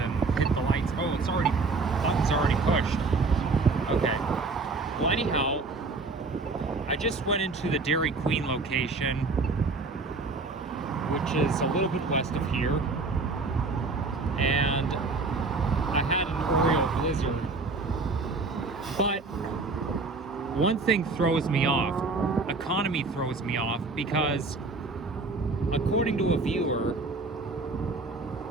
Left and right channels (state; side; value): quieter; left; 3.8 dB